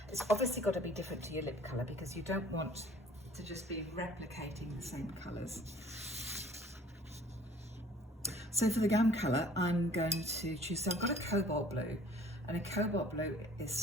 It's obviously got to be different to your lip colour, because you don't want to just be replicating the same colours. So for the gum colour, I'm going to choose, so I've got a cobalt blue, and a cobalt blue is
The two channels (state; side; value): normal; both; correlation 0.53